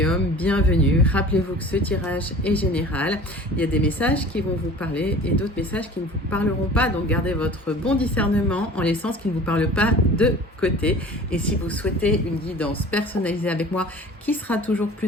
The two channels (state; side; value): normal; both; correlation 0.43